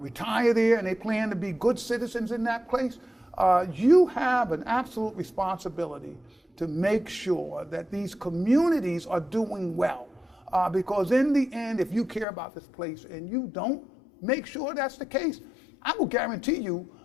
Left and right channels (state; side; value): drops out; right; at 12.2 s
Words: retire there, and they plan to be good citizens in that place. You have an absolute responsibility to make sure that these communities are doing well. Because in the end, if you care about this place and you don't make sure that's the case, I will guarantee you